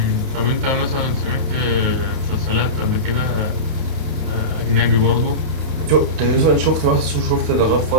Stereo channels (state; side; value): late; left; 30 ms